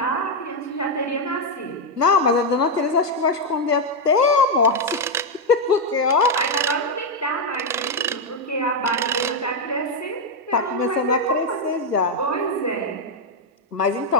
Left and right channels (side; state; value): both; normal; correlation 0.02